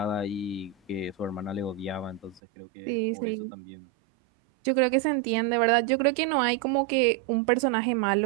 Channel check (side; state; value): left; drops out; at 2.4 s